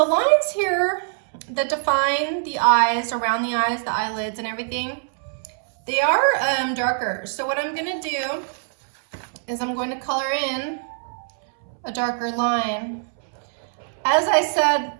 lines here that define the eyes, around the eyes, the eyelids and everything, they are darker. So what I'm gonna do is I'm going to color in a darker line. As I said,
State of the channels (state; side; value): silent; left; 63 dB below the other